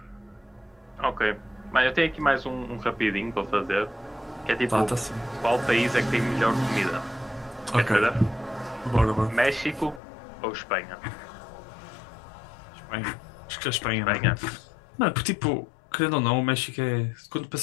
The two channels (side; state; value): right; drops out; at 10.0 s